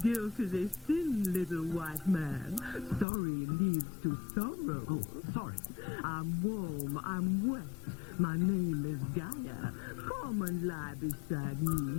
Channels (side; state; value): right; drops out; at 3.1 s